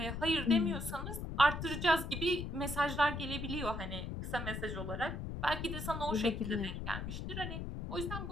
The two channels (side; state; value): left; noise; rumble, 5 dB below the sound